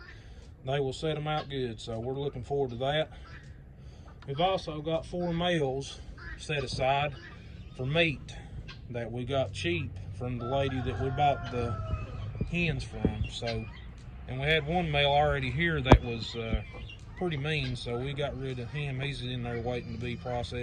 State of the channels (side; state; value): both; identical; correlation 1.00